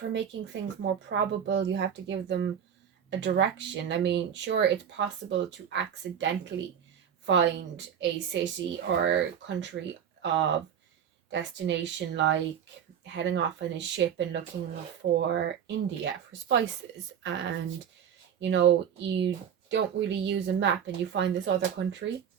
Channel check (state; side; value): quieter; left; 8.5 dB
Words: making things more probable you have to give them a direction. I mean, sure, it's possible to accidentally find a city or country of destination, like heading off in a ship and looking for India for spices, and you know, you don't really use a map and you find this other country,